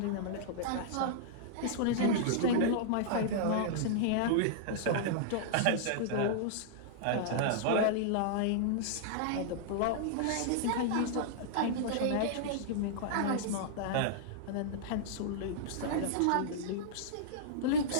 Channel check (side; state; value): both; different; correlation -0.02